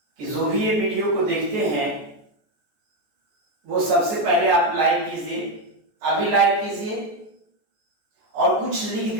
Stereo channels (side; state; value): left; late; 14 ms